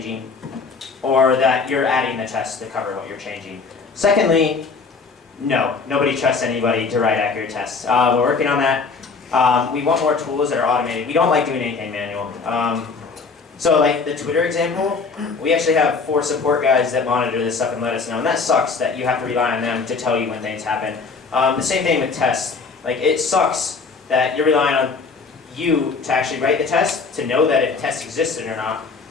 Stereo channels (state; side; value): quieter; right; 4.7 dB